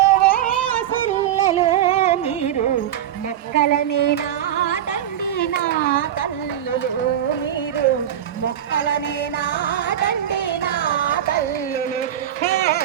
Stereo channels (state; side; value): quieter; left; 10.8 dB